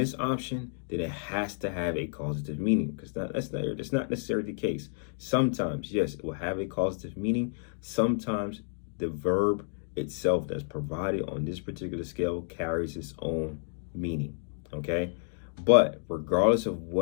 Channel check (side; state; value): right; silent; 58 dB below the other